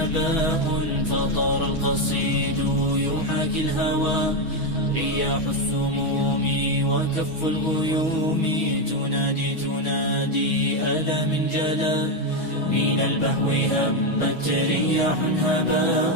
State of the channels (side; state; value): left; late; 9.7 ms